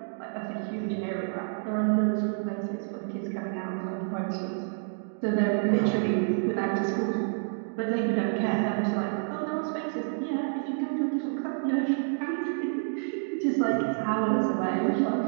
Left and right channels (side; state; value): left; silent; digital silence